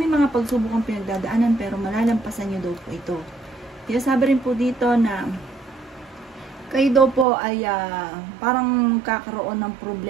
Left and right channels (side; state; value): left; drops out; at 7.2 s